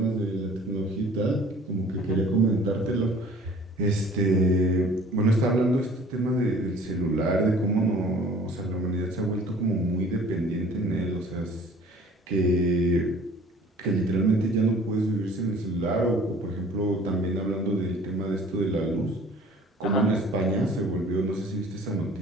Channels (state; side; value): normal; both; correlation 0.50